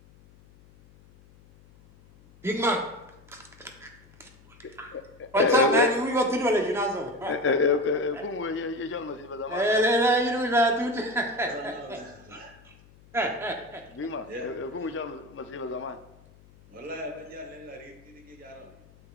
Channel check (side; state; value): left; noise; hum, 26 dB below the sound